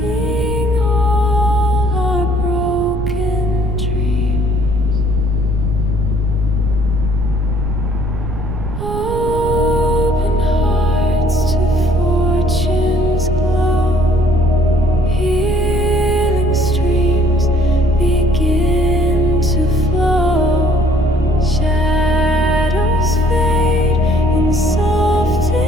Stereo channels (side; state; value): right; noise; rumble, 6 dB below the sound